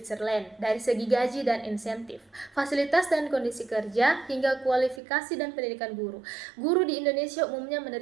dari segi gaji dan insentif, fasilitas dan kondisi kerja, hingga kualifikasi dan pendidikan guru. Guru di Indonesia umumnya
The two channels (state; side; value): drops out; left; at 5.0 s